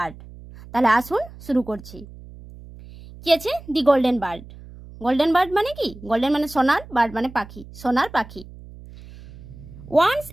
তাহলে আসুন শুরু করছি। কি আছে দি গোল্ডেন বার্ড? গোল্ডেন বার্ড মানে কি? গোল্ডেন মানে সোনার, বার্ড মানে পাখি, সোনার পাখি। Once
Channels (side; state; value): right; noise; hum, 18 dB below the sound